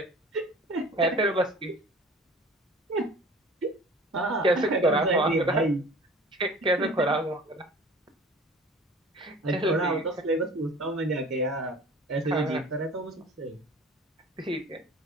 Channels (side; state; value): both; normal; correlation 0.44